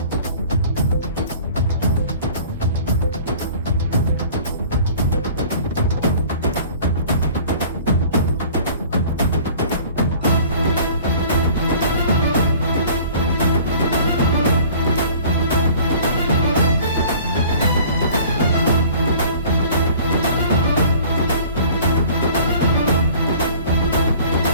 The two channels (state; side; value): inverted; both; correlation -0.48